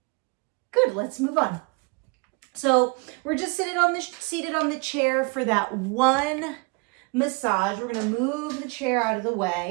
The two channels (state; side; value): quieter; left; 29.7 dB